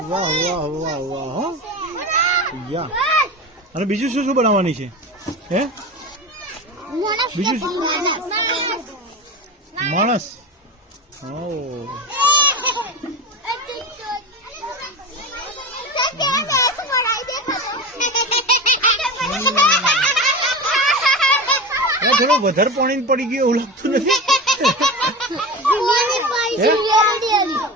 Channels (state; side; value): normal; both; correlation 0.26